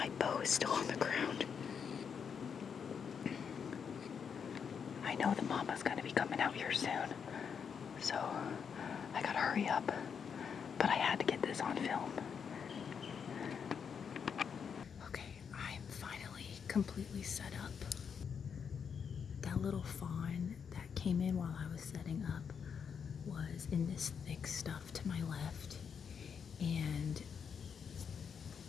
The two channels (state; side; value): quieter; right; 6.8 dB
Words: bow is still on the ground. I know the Mama's gonna be coming out here soon, so I gotta hurry up. But I had to get this on film. Okay, I'm finally completely set up. That little fawn that came in while I was setting up was in this thick stuff to my left, and